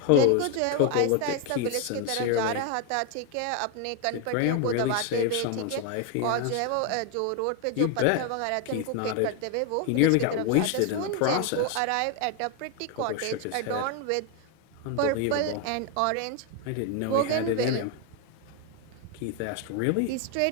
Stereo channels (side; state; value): both; different; correlation 0.01